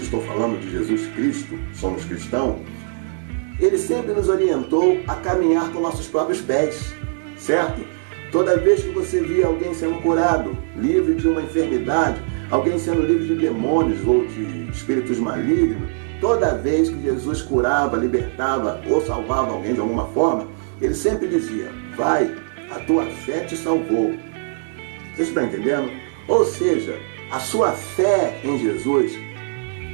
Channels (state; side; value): silent; left; digital silence